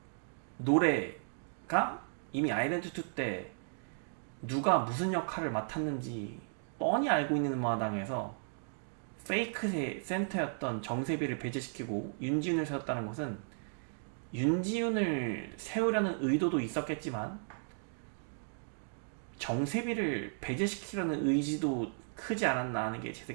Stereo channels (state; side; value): silent; left; digital silence